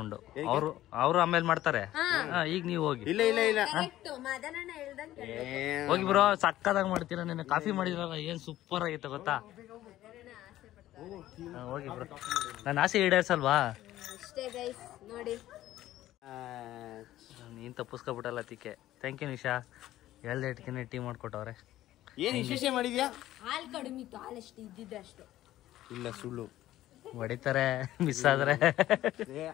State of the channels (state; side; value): quieter; right; 14.3 dB